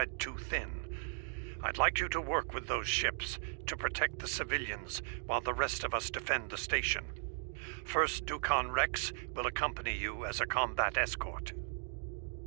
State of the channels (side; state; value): left; silent; 53 dB below the other